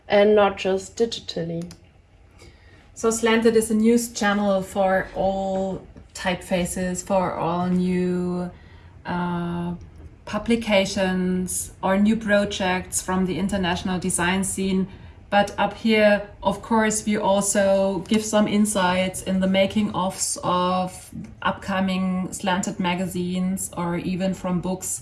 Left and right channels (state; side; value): identical; both; correlation 1.00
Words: and not just digitally. So Slanted is a news channel for all typefaces, for all new publications or new projects from the international design scene. But up here, of course, we also give some insights in the making ofs of upcoming Slanted magazines, or even from books.